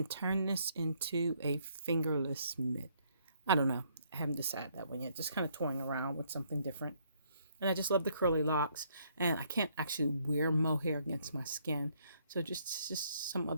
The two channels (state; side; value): inverted; both; correlation -0.69